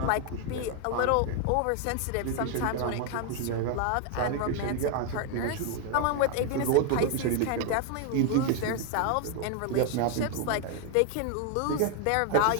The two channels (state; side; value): different; both; correlation 0.01